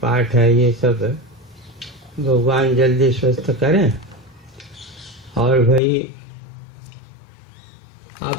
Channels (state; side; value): drops out; right; at 5.8 s